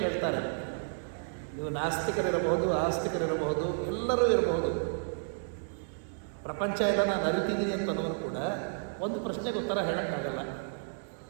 ಕೇಳ್ತಾರೆ. ನೀವು ನಾಸ್ತಿಕರಿರಬಹುದು, ಆಸ್ತಿಕರಿರಬಹುದು, ಎಲ್ಲರೂ ಇರಬಹುದು. ಪ್ರಪಂಚ ಎಲ್ಲ ನಾನು ಅರಿತಿದ್ದೀನಿ ಅಂತನವರು ಕೂಡ ಒಂದು ಪ್ರಶ್ನೆಗೆ ಉತ್ತರ ಹೇಳೋಕ್ಕಾಗಲ್ಲ.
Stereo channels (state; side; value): silent; left; digital silence